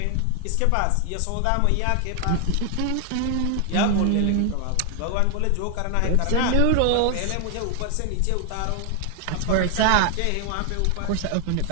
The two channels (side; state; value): both; different; correlation 0.00